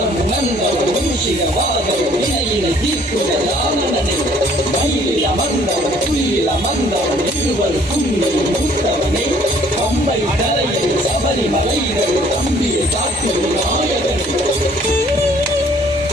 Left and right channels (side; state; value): both; normal; correlation 0.59